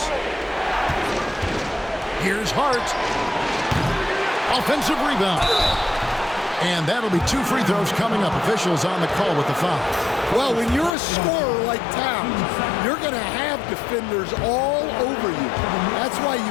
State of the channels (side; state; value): right; drops out; at 11.0 s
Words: Here's Hart. Offensive rebound. And that'll be 2 free throws coming up. Officials on the call with the foul. Well, when you're a scorer like Towns, you're going to have defenders all over you. That's why